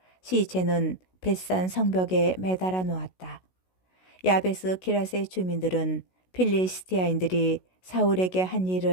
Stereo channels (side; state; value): right; late; 16 ms